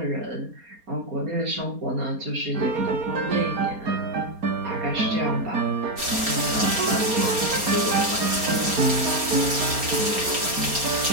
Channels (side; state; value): left; late; 4.3 ms